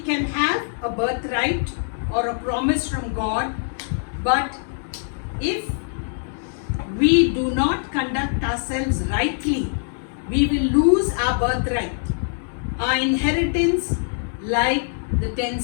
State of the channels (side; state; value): right; silent; digital silence